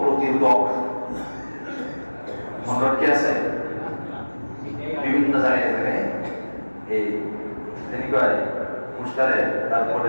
প্রতিরোধক। রড কি আছে বিভিন্ন জায়গায় এই পোস্টারে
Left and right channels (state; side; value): inverted; both; correlation -1.00